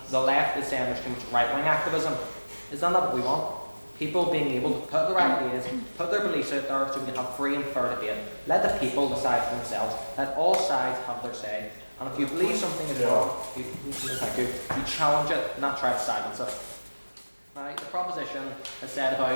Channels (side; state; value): both; inverted; correlation -1.00